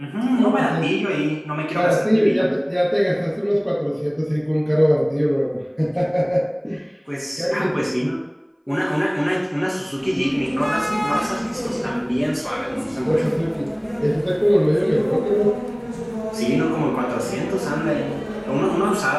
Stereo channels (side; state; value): both; identical; correlation 1.00